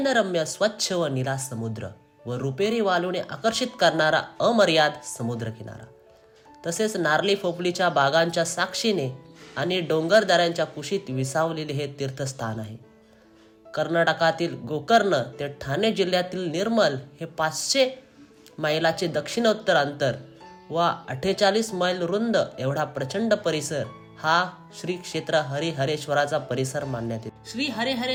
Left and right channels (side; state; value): both; identical; correlation 1.00